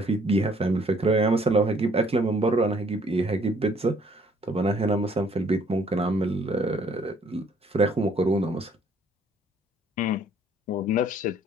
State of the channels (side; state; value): both; normal; correlation 0.61